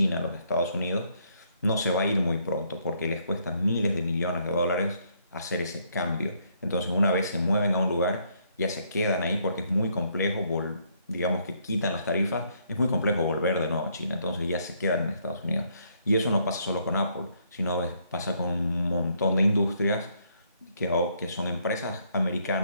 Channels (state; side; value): inverted; both; correlation -0.70